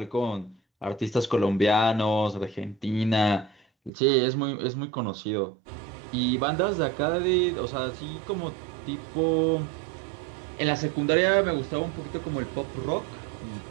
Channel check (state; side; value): drops out; left; at 3.9 s